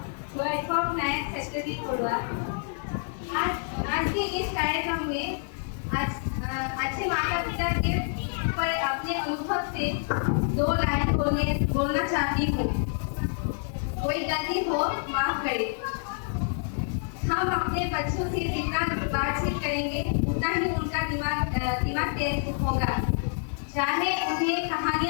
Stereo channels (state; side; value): silent; right; 57 dB below the other